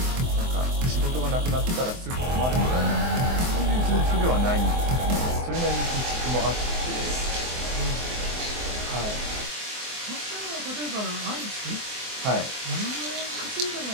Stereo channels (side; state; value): left; late; 24 ms